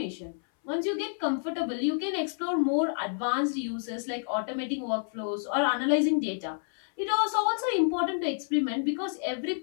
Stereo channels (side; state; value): right; silent; 59 dB below the other